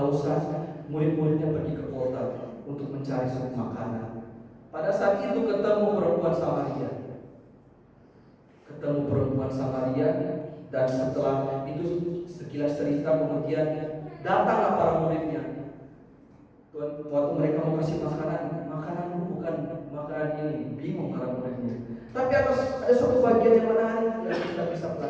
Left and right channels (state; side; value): identical; both; correlation 1.00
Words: murid-muridnya pergi ke kota untuk mencari suatu makanan. Pada saat itu ketemu perempuan Samaria. Ketemu perempuan Samaria dan setelah itu sekilas cerita kemudian datanglah para muridnya. Waktu mereka mau kasih makanan bukan makanan ini, bingung para muridnya. Tapi ada satu bagian yang menarik yang kita bisa